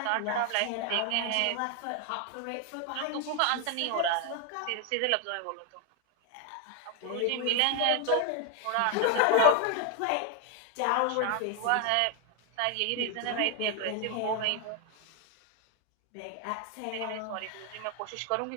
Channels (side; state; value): both; different; correlation 0.00